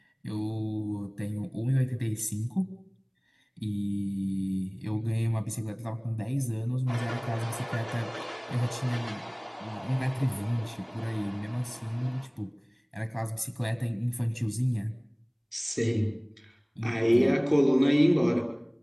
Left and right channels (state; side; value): identical; both; correlation 1.00